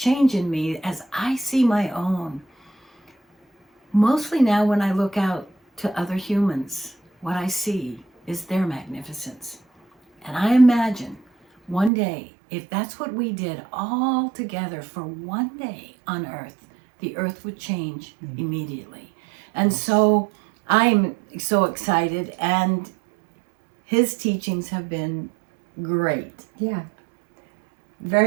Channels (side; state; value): left; drops out; at 11.9 s